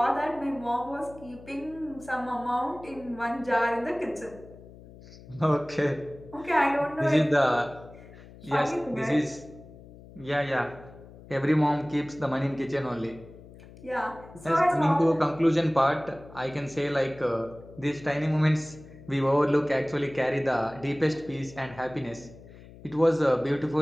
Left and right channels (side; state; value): left; noise; hum, 19 dB below the sound